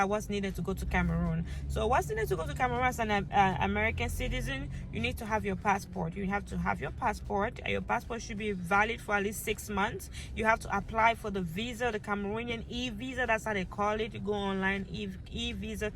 needed to go to Cameroon. So what's needed to go to Cameroon as an American citizen, you need to have your passport. You have to have your passport. Your passport should be valid for at least 6 months. You have to apply for the visa, the Cameroonian e-visa. That's how they call it. You go online, e-visa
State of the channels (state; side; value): identical; both; correlation 1.00